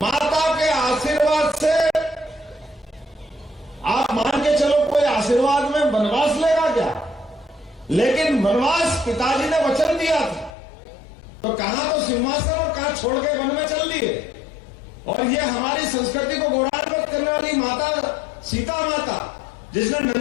के आशीर्वाद से आप मान के चलो, कोई आशीर्वाद में वनवास लेगा क्या? लेकिन वनवास पिताजी ने वचन दिया था, तो कहां तो सिंहासन और कहां छोड़ के वन में चल दिए। और ये हमारी संस्कृति को गौरवान्वित करने वाली माता सीता माता, जिसने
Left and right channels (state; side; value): drops out; right; at 10.5 s